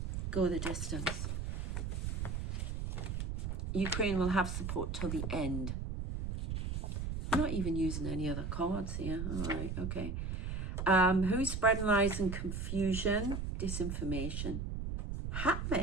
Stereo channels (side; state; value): right; noise; rumble, 3 dB below the sound